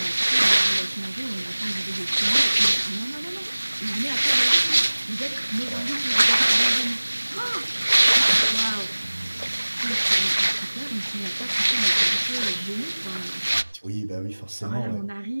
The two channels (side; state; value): both; inverted; correlation -1.00